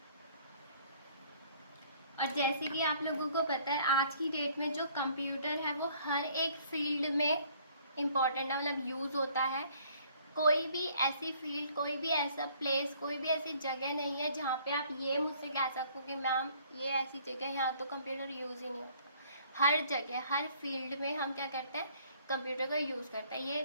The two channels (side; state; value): both; inverted; correlation -0.59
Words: और जैसे कि आप लोगों को पता है आज की डेट में जो कंप्यूटर है वो हर एक फील्ड में इम्पॉर्टेंट है, मतलब यूज़ होता है। कोई भी ऐसी फील्ड, कोई भी ऐसा प्लेस, कोई भी ऐसी जगह नहीं है जहाँ पे आप ये मुझसे कह सको कि मैम ये ऐसी जगह यहाँ तो कंप्यूटर यूज़ ही नहीं होता। हर जगह, हर फील्ड में हम क्या करते हैं, कंप्यूटर का यूज़ करते हैं,